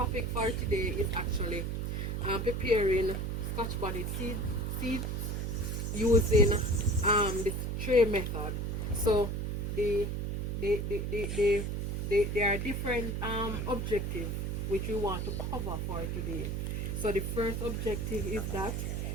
for today is actually preparing Scotch bonnet seeds using the tray method. So the there are different objectives which we want to cover for today. So the first objective is that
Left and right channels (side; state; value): right; noise; hum, 1 dB below the sound